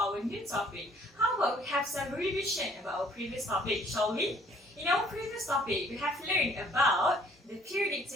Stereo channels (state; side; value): normal; both; correlation 0.60